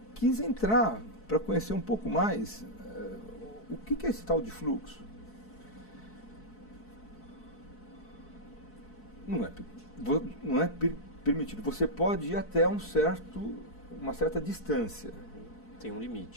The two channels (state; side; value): late; right; 4.6 ms